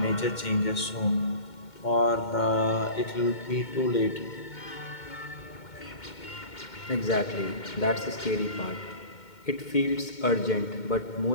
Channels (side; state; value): right; late; 2.2 ms